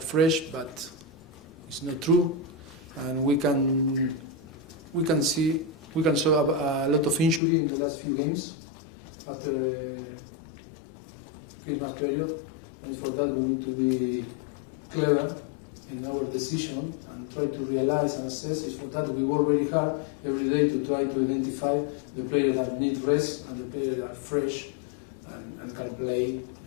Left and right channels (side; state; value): right; drops out; at 7.4 s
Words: but it's not true, and we can show a lot of injury in the last few games after the Christmas period, and for that we need to be clever in our decision and try to realize and assess. It's for that we work very hard every day to try to identify the players that need rest and the players that are fresh and can play